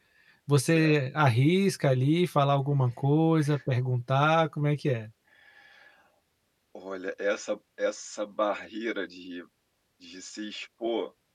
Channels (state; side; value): identical; both; correlation 1.00